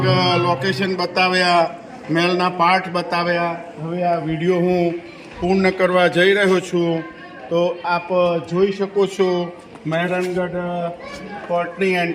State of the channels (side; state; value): both; identical; correlation 1.00